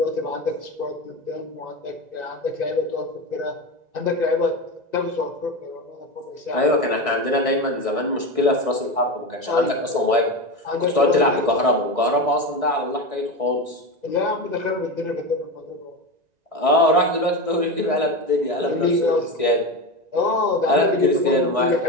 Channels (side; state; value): left; late; 1.9 ms